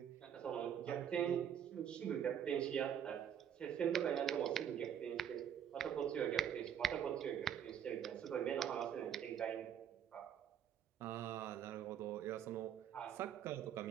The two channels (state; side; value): quieter; left; 9.1 dB